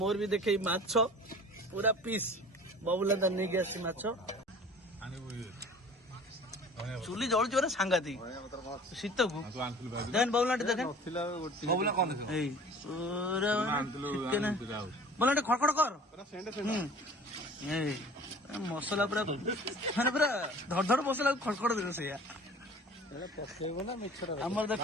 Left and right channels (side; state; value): both; normal; correlation 0.45